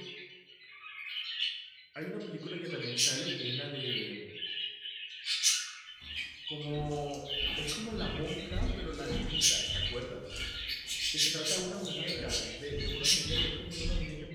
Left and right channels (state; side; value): identical; both; correlation 1.00